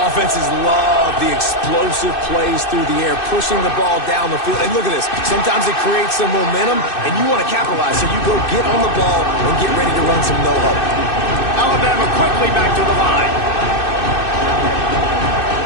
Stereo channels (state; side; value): late; right; 2.6 ms